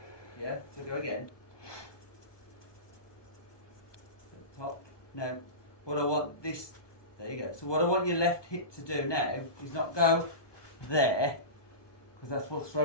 Yeah. So go again. Top. Now, what I want this, there you go. So what I want your left hip to do now is not go there, because that's what's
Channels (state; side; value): late; right; 1.2 ms